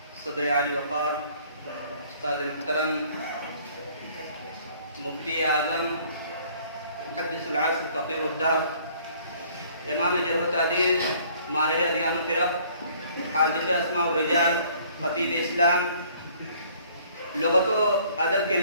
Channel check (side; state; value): both; inverted; correlation -0.58